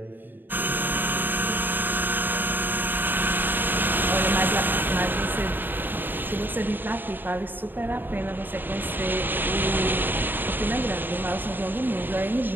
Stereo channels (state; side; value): late; left; 0.093 ms